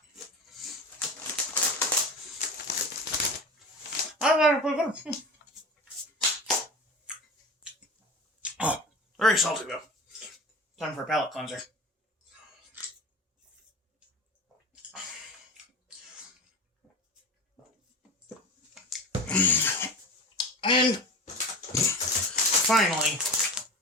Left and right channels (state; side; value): normal; both; correlation 0.31